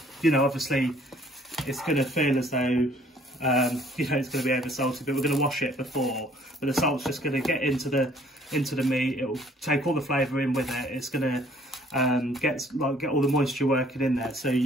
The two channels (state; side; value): normal; both; correlation 0.59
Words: it's going to feel as though, it's going to be over salty, but we're going to wash it before. But the salt's just going to get into the meat. It'll take all the flavour in with it. It's going to get all the moisture working in there, so